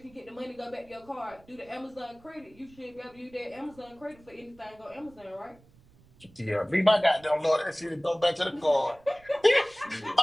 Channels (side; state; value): right; noise; rumble, 27 dB below the sound